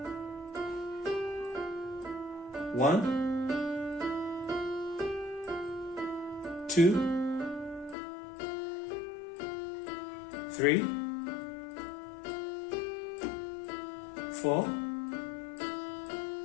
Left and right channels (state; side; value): drops out; right; at 8.0 s